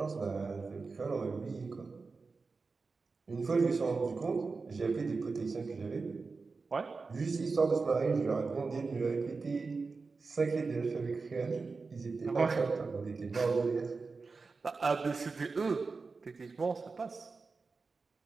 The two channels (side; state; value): left; quieter; 4.3 dB